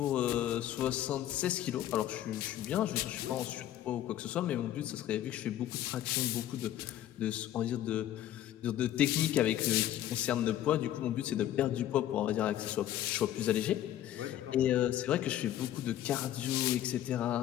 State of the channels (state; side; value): quieter; right; 12.3 dB